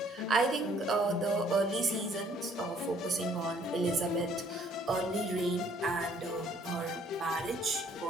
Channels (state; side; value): normal; both; correlation 0.61